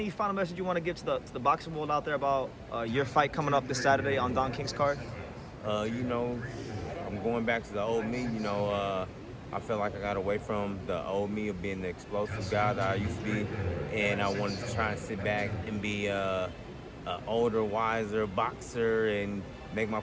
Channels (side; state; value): both; identical; correlation 1.00